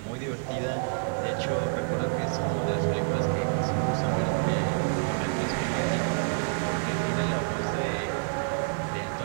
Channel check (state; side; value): silent; left; digital silence